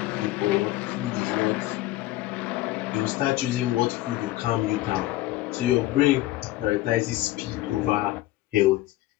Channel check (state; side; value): quieter; right; 16.4 dB